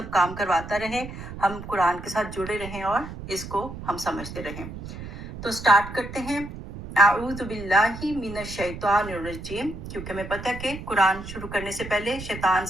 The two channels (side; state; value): right; noise; rumble, 11 dB below the sound